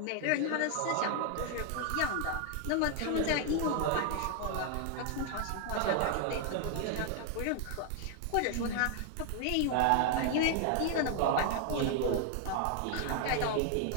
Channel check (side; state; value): both; different; correlation 0.00